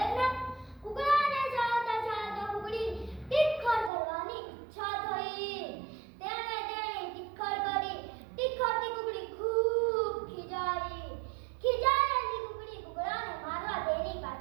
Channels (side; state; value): left; drops out; at 3.9 s